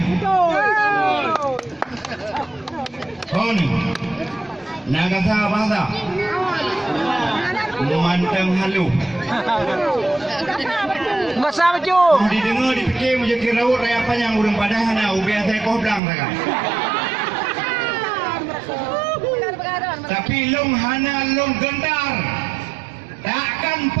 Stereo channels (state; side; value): drops out; left; at 16.0 s